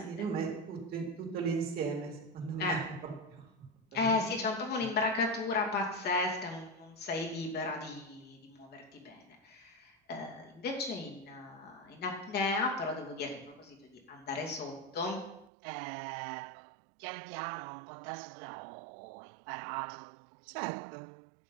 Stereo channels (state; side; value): drops out; left; at 15.5 s